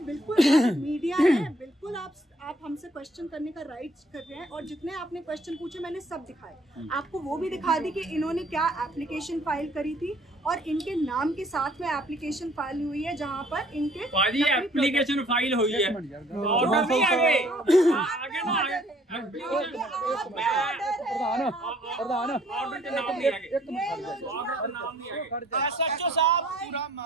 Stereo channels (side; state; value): both; normal; correlation 0.60